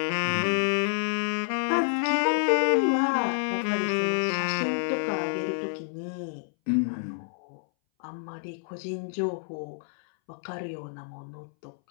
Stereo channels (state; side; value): silent; right; 59 dB below the other